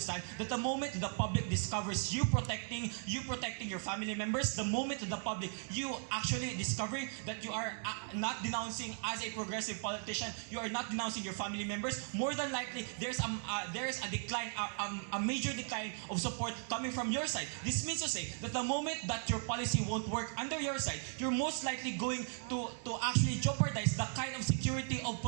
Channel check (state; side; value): silent; left; 53 dB below the other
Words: that the moment the public discovers you protecting your family members, the moment the public you actually discovering that you are not denouncing as a progressive politician, you are not denouncing your family members, more than likely there's a decline, a major decline of support coming from your side. This means to say that the moment that your policy won't work under your side, you're most likely going to actually jeopardize the kind of security of